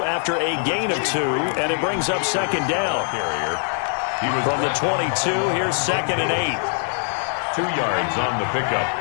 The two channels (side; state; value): right; silent; 61 dB below the other